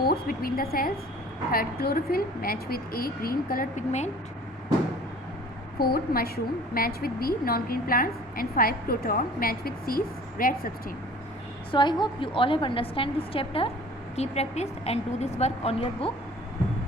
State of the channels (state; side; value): normal; both; correlation 0.47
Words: between the cells. Third, chlorophyll match with A, green colored pigment. Fourth, mushroom match with B, non-green plants. And 5, croton match with C, red substance. So I hope you all have understand this chapter. Keep practice and do this work on your book.